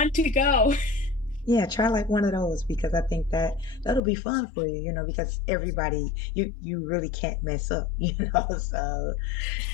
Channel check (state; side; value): drops out; right; at 4.0 s